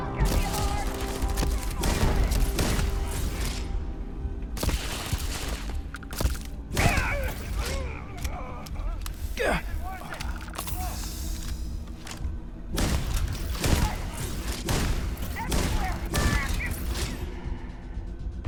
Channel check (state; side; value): identical; both; correlation 1.00